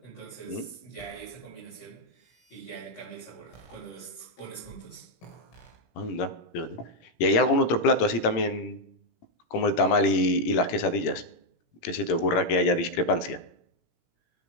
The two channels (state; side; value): late; right; 17 ms